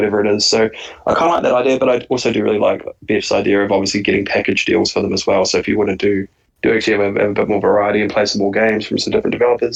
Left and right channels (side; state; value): both; identical; correlation 1.00